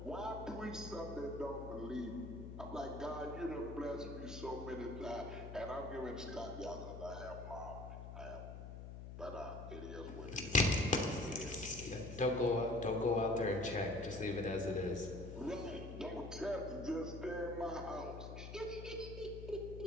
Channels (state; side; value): noise; left; hum, 9 dB below the sound